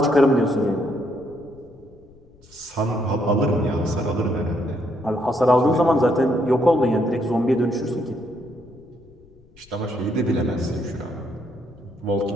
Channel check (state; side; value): noise; left; rumble, 27 dB below the sound